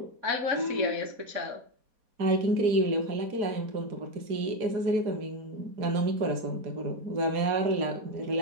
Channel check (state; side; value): late; left; 4.2 ms